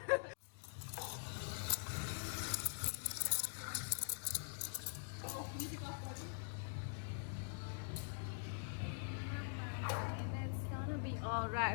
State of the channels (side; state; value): right; silent; digital silence